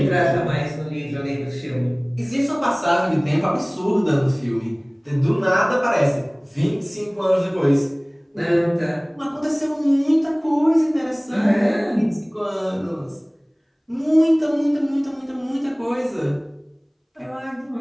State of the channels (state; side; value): identical; both; correlation 1.00